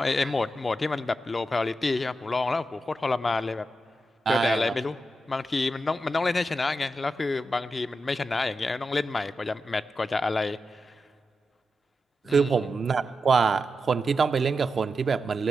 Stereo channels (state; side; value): normal; both; correlation 0.88